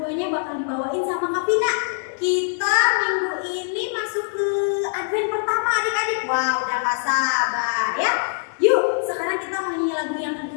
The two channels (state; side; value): silent; right; 64 dB below the other